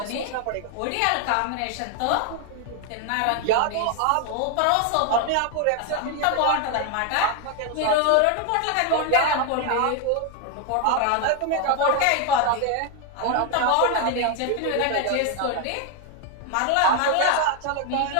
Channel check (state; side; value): different; both; correlation 0.01